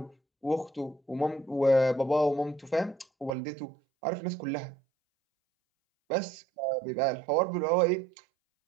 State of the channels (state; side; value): drops out; left; at 3.3 s